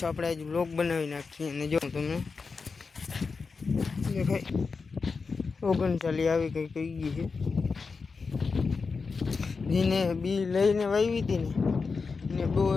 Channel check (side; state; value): right; quieter; 4.7 dB